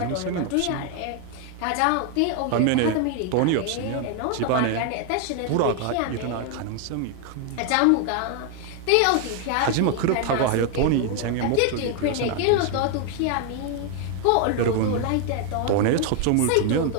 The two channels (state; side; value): different; both; correlation 0.01